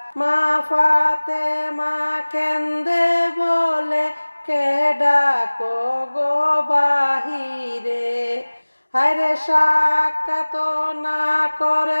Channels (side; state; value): both; inverted; correlation -1.00